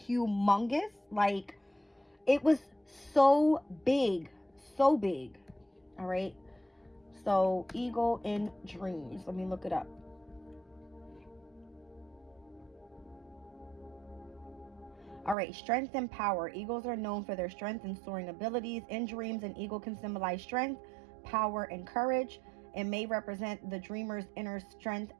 humongous, like it was so big. All right. So eagle in dreams. Let me look it up. All right, strength and power. Eagles are known for their strength and soaring abilities. In dreams, an eagle can symbolize strength, power, and courage. It may represent the dreamer's inner strength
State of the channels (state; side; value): drops out; left; at 15.4 s